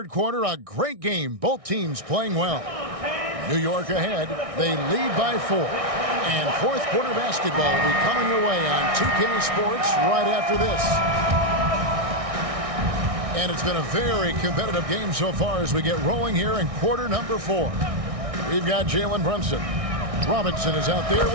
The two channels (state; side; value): late; left; 1.6 ms